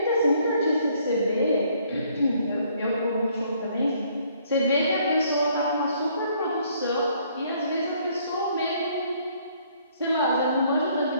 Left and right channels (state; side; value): inverted; both; correlation -0.64